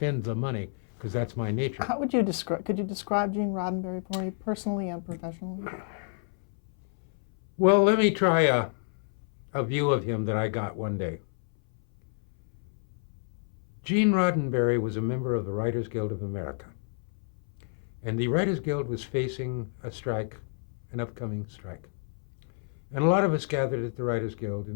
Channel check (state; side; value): silent; right; 58 dB below the other